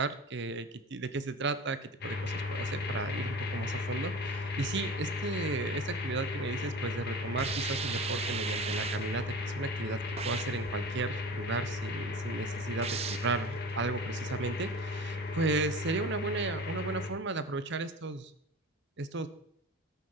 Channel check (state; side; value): normal; both; correlation 0.35